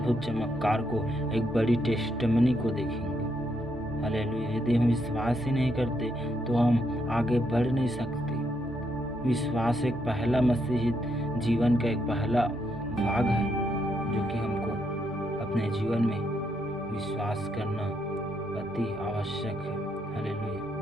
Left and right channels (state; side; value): normal; both; correlation 0.77